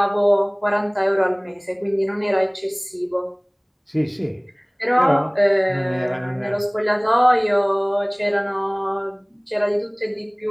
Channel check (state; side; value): identical; both; correlation 1.00